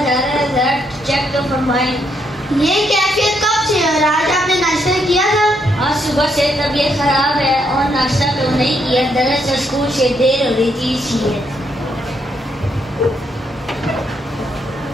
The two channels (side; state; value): both; normal; correlation 0.75